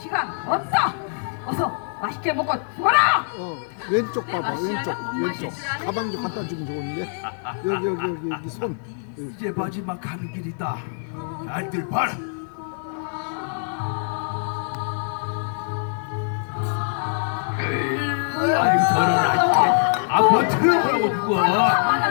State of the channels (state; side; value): silent; right; 59 dB below the other